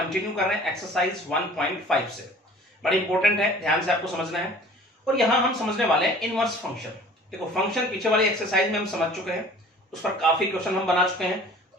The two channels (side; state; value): both; normal; correlation 0.48